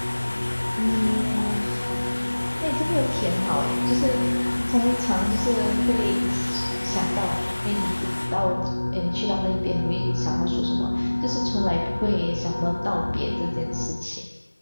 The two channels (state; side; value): inverted; both; correlation -1.00